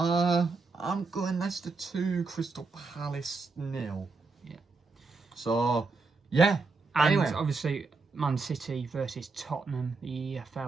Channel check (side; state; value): left; quieter; 4.1 dB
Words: I'm going Leicester 2, Crystal Palace 0. Yeah. So, yeah. And anyway. Obviously, Man City versus Tottenham, the